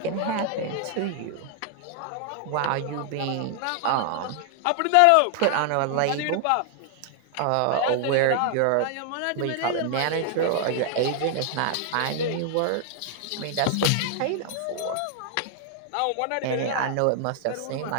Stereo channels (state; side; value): different; both; correlation 0.00